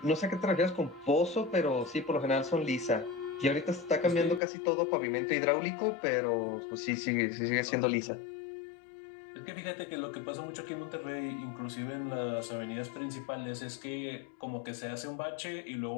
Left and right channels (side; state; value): right; drops out; at 4.4 s